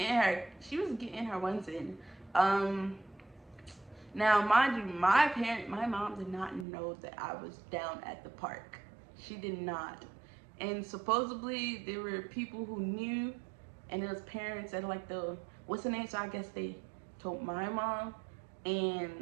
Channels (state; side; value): drops out; left; at 6.7 s